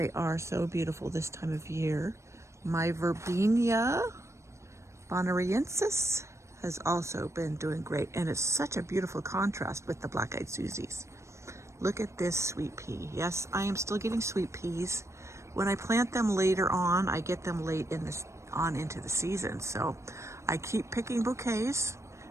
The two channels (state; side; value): late; left; 0.14 ms